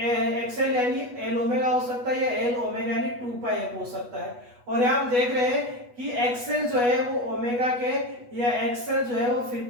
यानी एल ओमेगा हो सकता है या एल ओमेगा यानी 2πf हो सकता है। और यहाँ हम देख रहे हैं कि एक्सएल जो है वो ओमेगा के या एक्सएल जो है वो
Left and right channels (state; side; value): late; left; 8.2 ms